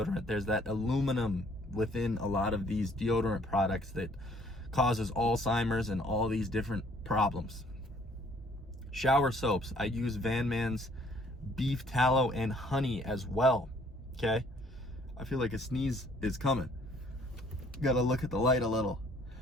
There's that aluminum within a lot of these deodorant products that causes Alzheimer's and all these different problems. Shower soaps. I use Van Man's beef tallow and honey as well, okay? I feel like a sneeze is coming. Gotta look at the light a little.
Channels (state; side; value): normal; both; correlation 0.60